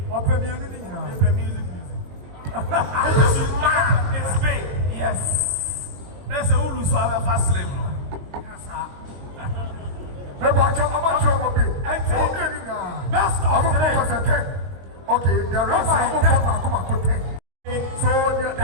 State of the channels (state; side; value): late; left; 21 ms